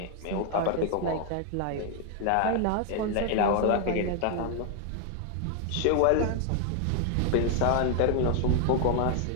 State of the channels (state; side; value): different; both; correlation 0.00